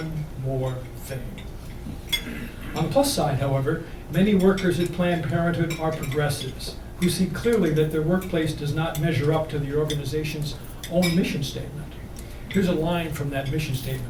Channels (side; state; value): both; identical; correlation 1.00